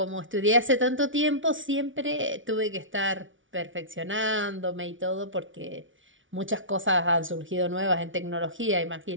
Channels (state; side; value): late; left; 0.56 ms